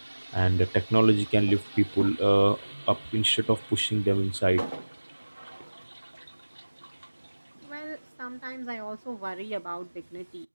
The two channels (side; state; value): both; inverted; correlation -1.00